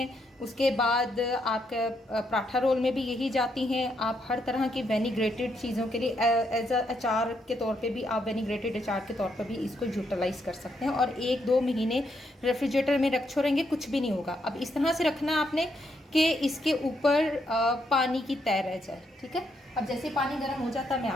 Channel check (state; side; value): normal; both; correlation 0.77